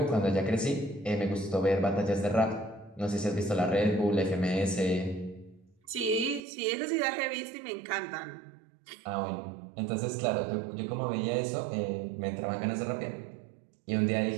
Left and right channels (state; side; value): drops out; left; at 6.4 s